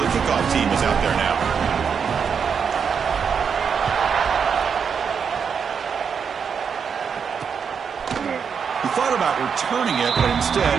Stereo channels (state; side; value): quieter; left; 6.6 dB